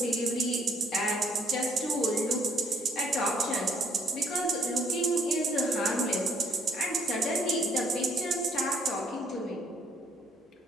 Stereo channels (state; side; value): normal; both; correlation 0.64